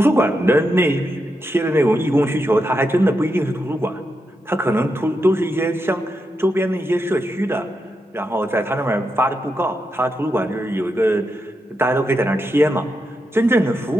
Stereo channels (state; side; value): normal; both; correlation 0.85